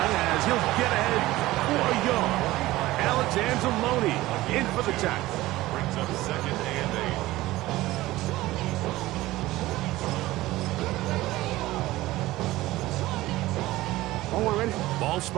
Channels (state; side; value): quieter; left; 17.5 dB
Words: as he'll get ahead for a yard. Alex Anzalone in for the tackle. Brings up 2nd and 8. Ball